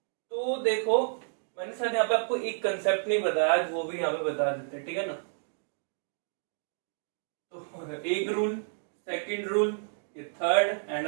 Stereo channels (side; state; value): left; silent; digital silence